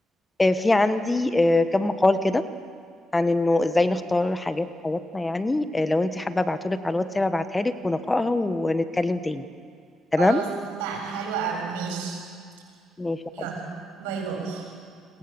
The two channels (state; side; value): normal; both; correlation 0.91